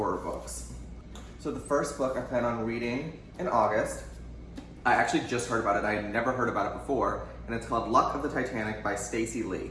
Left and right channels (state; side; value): identical; both; correlation 1.00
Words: books. So the first book I plan on reading in August, I actually just heard about it, I had never heard about it before, and it's called Luck of the Titanic by Stacey Lee.